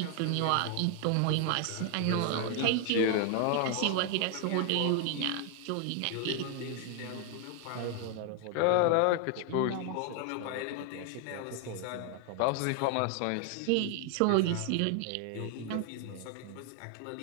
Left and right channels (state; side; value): different; both; correlation 0.00